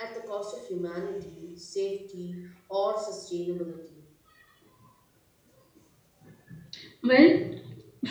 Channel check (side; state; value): both; identical; correlation 1.00